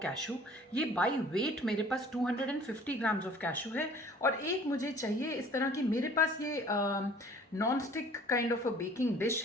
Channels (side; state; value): both; normal; correlation 0.52